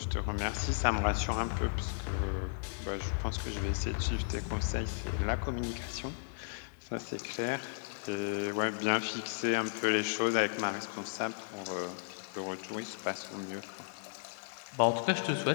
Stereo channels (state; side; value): silent; right; digital silence